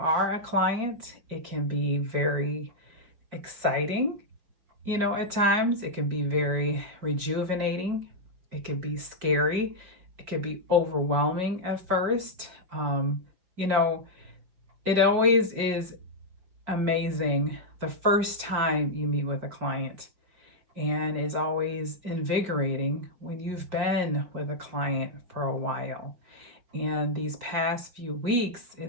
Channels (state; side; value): late; left; 4.8 ms